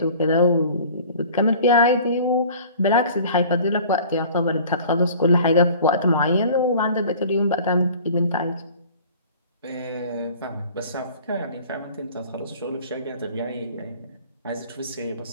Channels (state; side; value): inverted; both; correlation -0.46